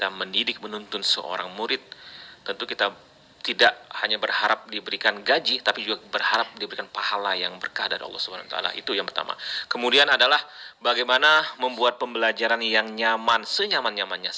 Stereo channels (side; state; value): both; identical; correlation 1.00